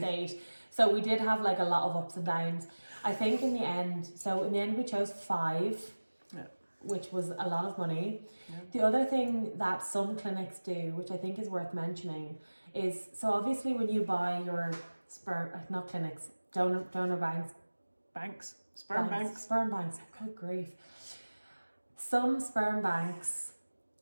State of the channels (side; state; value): both; inverted; correlation -1.00